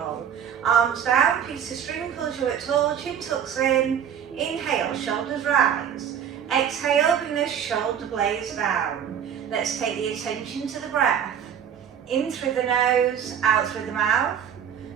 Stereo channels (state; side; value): quieter; left; 8.6 dB